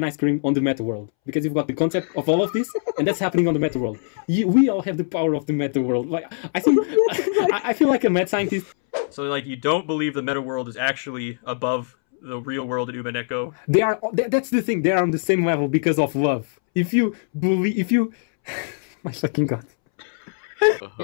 ice cream on the meta world, because you've got the concept of all of this, and that's happening on the meta world. We all have the power of the meta world. Like I feel like a mad scientist. So, like, you don't believe the meta world is actually above the real world in Umineko? They are. That's the thing. They are on the same level because of love. If you believe, my fucking god.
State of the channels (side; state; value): right; silent; 64 dB below the other